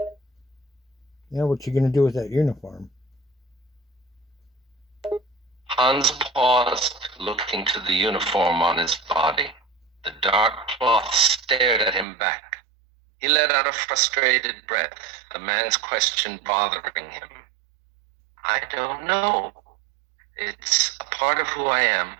Yeah, what you going to do with that uniform? Hans paused, looking to the uniform on his body. The dark cloth stared at him back. He let out a frustrated breath, the man's question bothering him. I don't know. It's a part of who I am.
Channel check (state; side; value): drops out; left; at 12.1 s